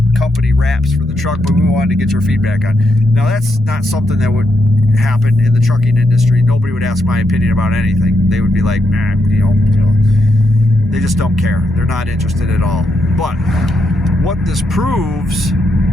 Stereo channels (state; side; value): normal; both; correlation 0.81